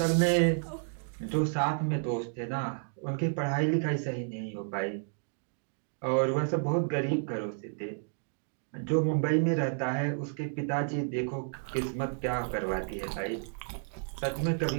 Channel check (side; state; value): left; silent; digital silence